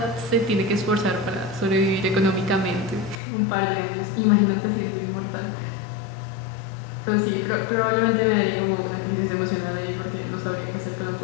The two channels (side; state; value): right; drops out; at 3.2 s